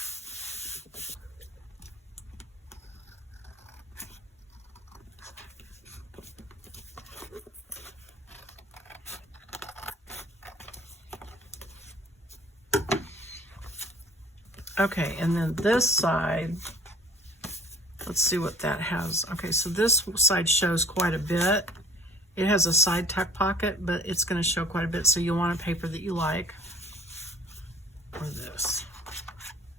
okay, and then this side, let's see what that has. Okay, so this side shows quite a bit. It has a side tuck pocket, but it's going to show quite a bit, so you'll want a paper that you like. Or this.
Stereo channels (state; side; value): normal; both; correlation 0.49